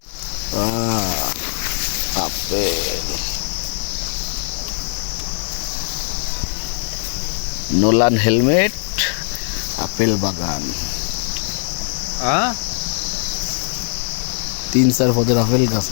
আপেল, নোলান হেলমেট, আপেল বাগান, हां 3-4 পদের আপেল গাছ।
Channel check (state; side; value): silent; right; 64 dB below the other